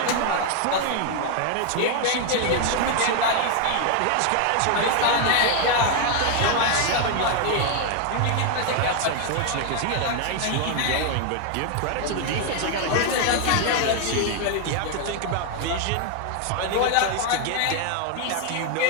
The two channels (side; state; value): both; different; correlation 0.00